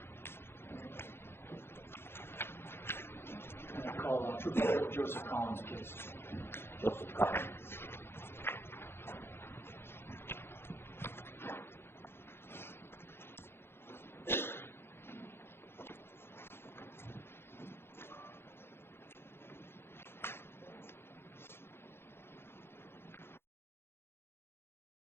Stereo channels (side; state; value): right; late; 0.11 ms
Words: I call Trooper Joseph Collins, please. Joseph Collins.